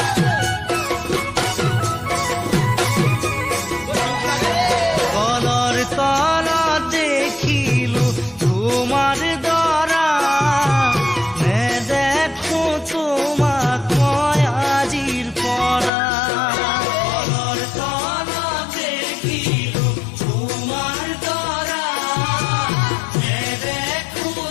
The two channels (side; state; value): right; drops out; at 15.9 s